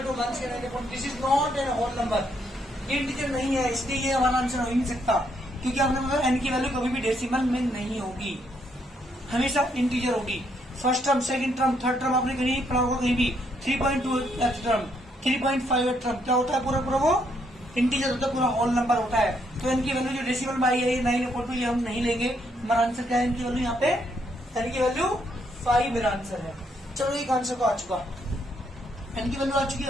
to minus के 9. This is not an whole number. ये integer नहीं है इसलिए ये हमारा आंसर हो ही नहीं सकता क्योंकि आपने बोला n की वैल्यू कभी भी डेसिमल में नहीं होगी, हमेशा इंटीजर होगी. First term, second term, third term आपने कहीं पढ़ा होगा कहीं भी. 3.2 टर्म, 3.5 टर्म क्या होता है पूरा पूरा वो इंटीजर होता है, पूरा होल नंबर होता है. तो n की वैल्यू जो डेसिमल में आई है 9/2 ये हम नहीं लेंगे. हमारा आंसर क्या है n की वैल्यू यहाँ पे n की वैल्यू 5 मेरा आंसर है. चलो एक आंसर तो आ चुका, n की वैल्यू आ चुकी.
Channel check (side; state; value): both; normal; correlation 0.73